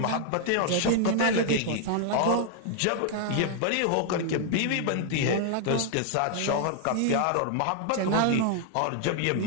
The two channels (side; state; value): both; different; correlation 0.00